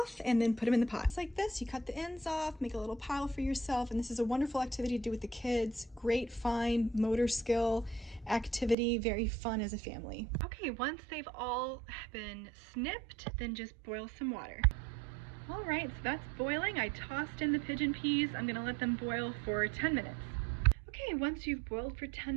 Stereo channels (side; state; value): left; drops out; at 8.8 s